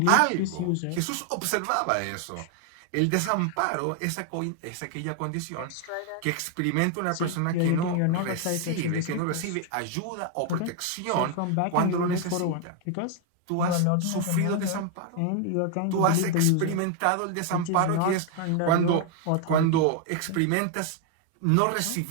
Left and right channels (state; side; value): different; both; correlation 0.00